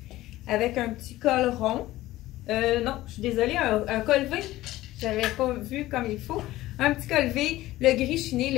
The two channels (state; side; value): quieter; right; 16.5 dB